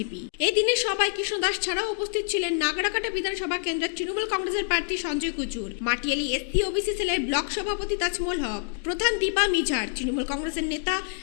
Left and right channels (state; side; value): silent; right; 60 dB below the other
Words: এই দিনে সবাই কৃষ্ণ দাস ছাড়াও উপস্থিত ছিলেন নাগরাকাটা বিধানসভা কেন্দ্রের তৃণমূল কংগ্রেসের প্রার্থী সঞ্জয় কুচুর, মাটিয়ালি এসসি ওবিসি সেলের ব্লক সভাপতি তাজমল হক, প্রধান দীপা মিঝার, তৃণমূল কংগ্রেসের নেতা